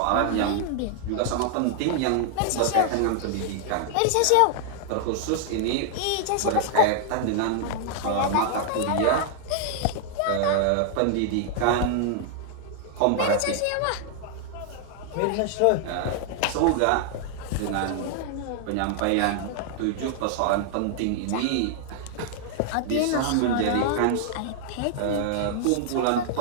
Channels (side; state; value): both; different; correlation 0.00